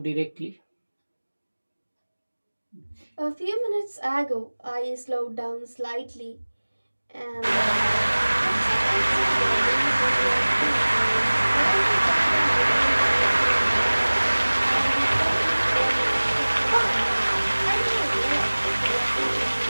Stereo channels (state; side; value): inverted; both; correlation -1.00